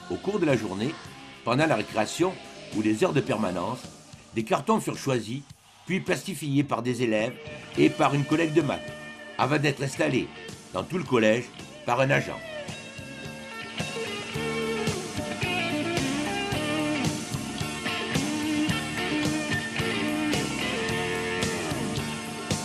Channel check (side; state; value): both; identical; correlation 1.00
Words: au cours de la journée, pendant la récréation ou les heures de permanence, des cartons furent choisis, puis plastifiés par des élèves et par une collègue de maths, avant d'être installés dans tout le collège par un agent.